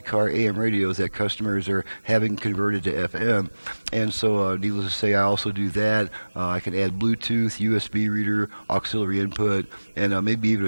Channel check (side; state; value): both; inverted; correlation -1.00